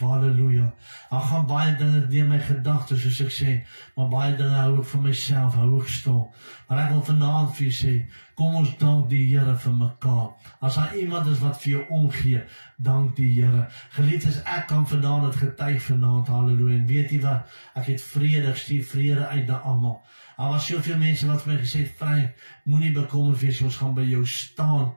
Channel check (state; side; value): inverted; both; correlation -1.00